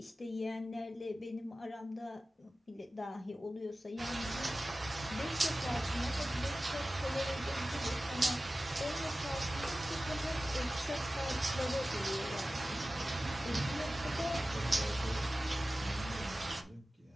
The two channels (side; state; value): both; normal; correlation 0.96